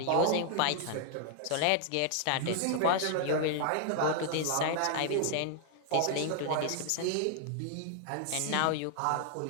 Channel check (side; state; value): both; different; correlation 0.00